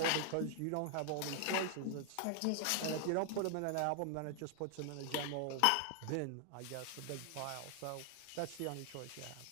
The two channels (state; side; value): different; both; correlation 0.00